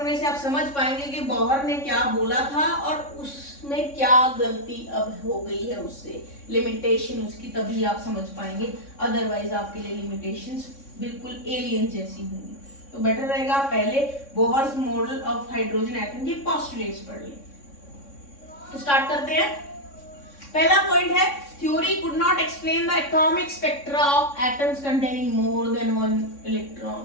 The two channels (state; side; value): late; right; 3.6 ms